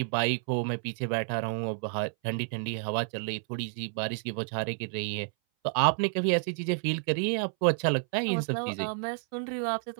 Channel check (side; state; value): left; silent; 58 dB below the other